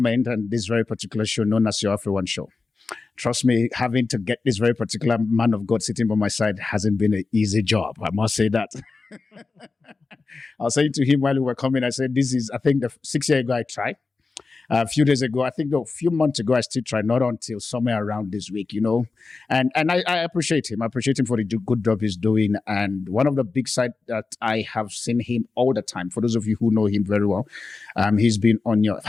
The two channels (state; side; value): quieter; right; 4.1 dB